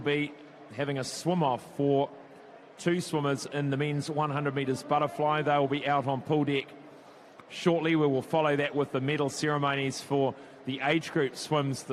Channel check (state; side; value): identical; both; correlation 1.00